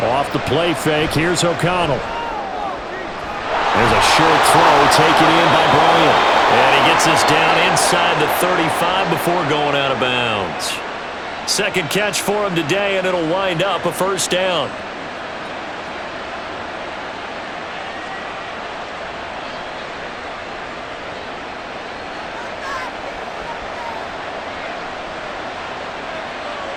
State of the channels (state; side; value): identical; both; correlation 1.00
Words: Off the play fake, here's O'Connell. There's a short throw taken in by Bryant. And he gets this down inside the 35 before going out of bounds. 2nd catch for him today, and it'll wind up a first down.